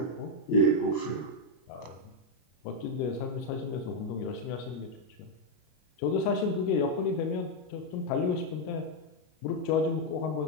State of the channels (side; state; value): right; late; 33 ms